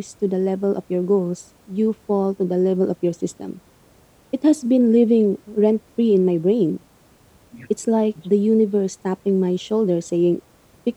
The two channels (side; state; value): both; identical; correlation 1.00